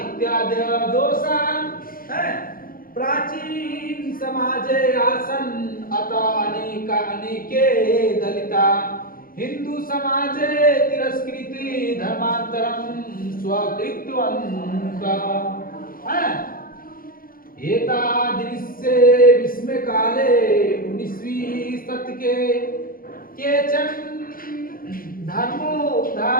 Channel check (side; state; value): right; late; 0.42 ms